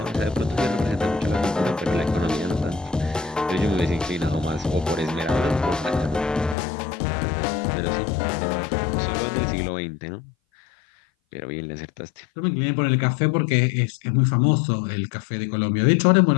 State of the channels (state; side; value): drops out; right; at 6.6 s